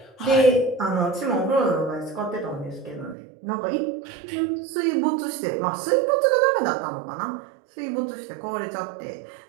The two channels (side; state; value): left; drops out; at 3.2 s